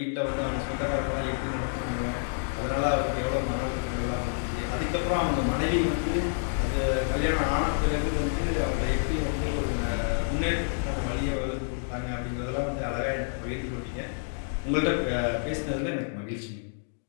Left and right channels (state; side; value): silent; right; digital silence